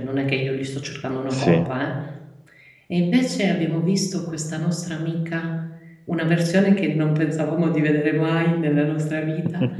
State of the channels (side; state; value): both; identical; correlation 1.00